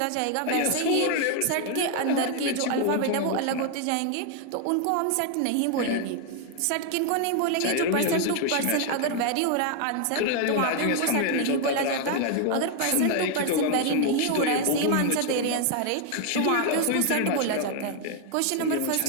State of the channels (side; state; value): both; different; correlation 0.00